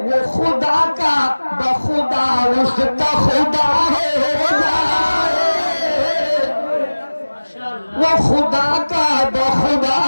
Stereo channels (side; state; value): both; inverted; correlation -1.00